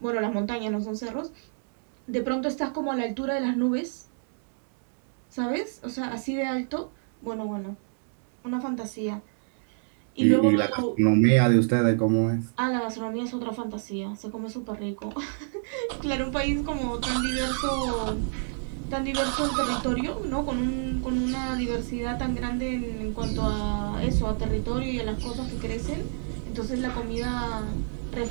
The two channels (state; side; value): silent; left; digital silence